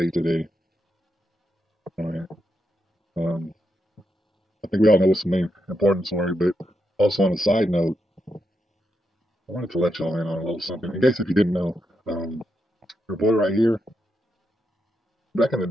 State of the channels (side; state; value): both; normal; correlation 0.83